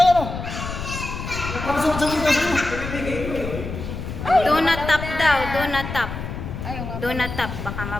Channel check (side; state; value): left; noise; rumble, 7 dB below the sound